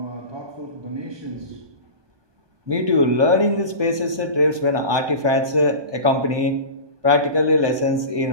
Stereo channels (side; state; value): left; late; 1.2 ms